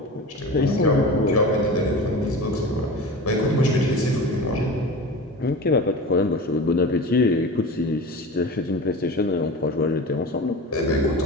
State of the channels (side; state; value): both; normal; correlation 0.32